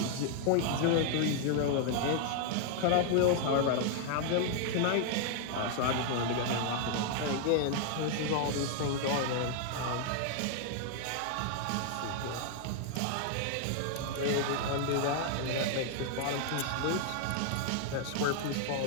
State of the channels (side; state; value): both; different; correlation 0.00